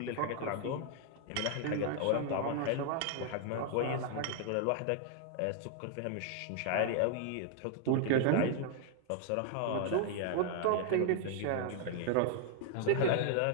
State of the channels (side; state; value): both; different; correlation 0.00